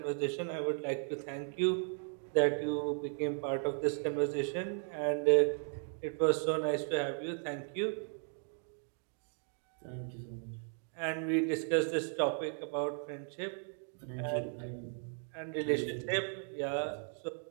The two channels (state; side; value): silent; left; 54 dB below the other